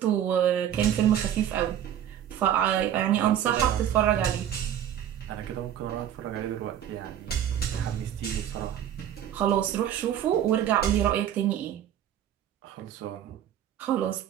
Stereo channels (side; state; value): left; quieter; 10.4 dB